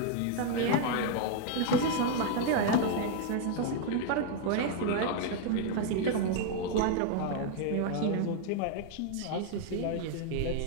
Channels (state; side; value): different; both; correlation 0.00